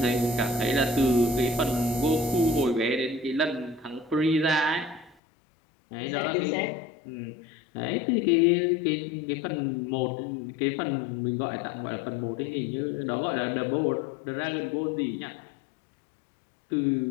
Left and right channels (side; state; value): right; drops out; at 5.2 s